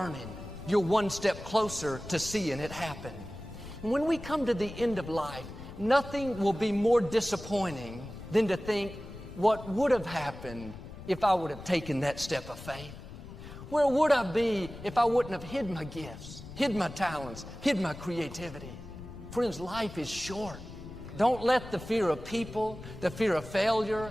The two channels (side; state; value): left; noise; rumble, 13 dB below the sound